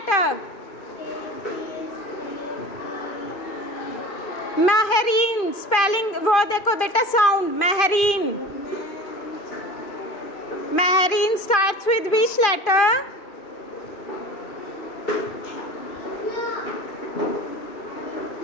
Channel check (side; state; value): right; late; 2.5 ms